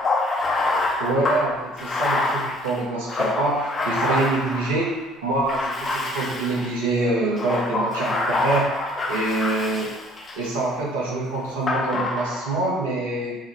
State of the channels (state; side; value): normal; both; correlation 0.56